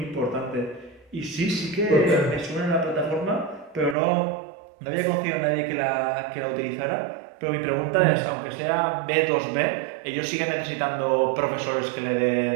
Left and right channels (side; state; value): left; drops out; at 4.0 s